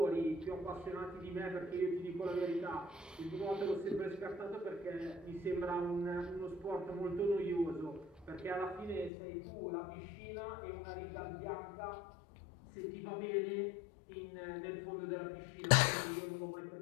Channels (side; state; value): right; drops out; at 9.1 s